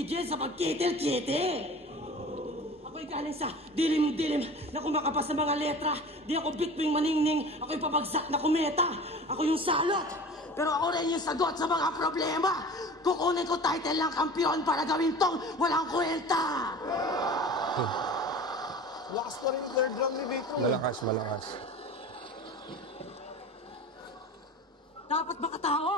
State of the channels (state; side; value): normal; both; correlation 0.38